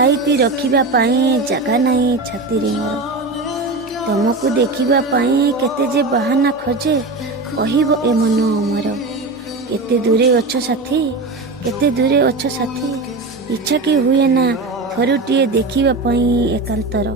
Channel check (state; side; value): quieter; left; 3.3 dB